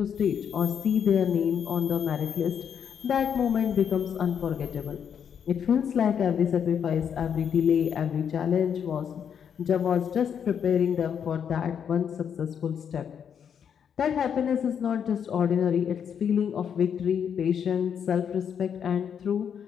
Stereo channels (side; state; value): right; quieter; 7.9 dB